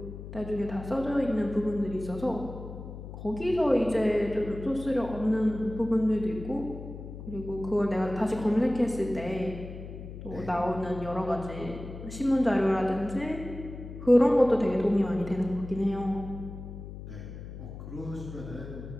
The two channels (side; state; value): left; noise; hum, 11 dB below the sound